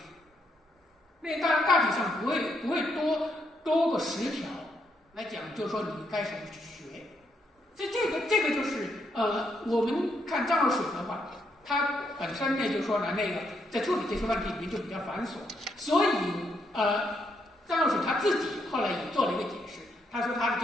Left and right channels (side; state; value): both; normal; correlation 0.76